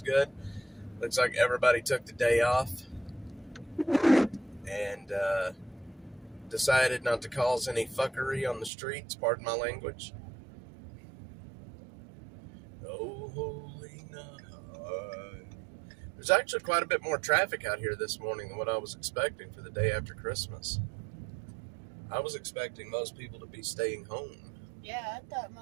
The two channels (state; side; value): drops out; left; at 8.7 s